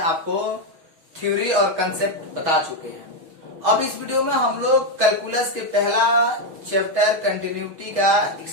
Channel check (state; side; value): late; left; 6.2 ms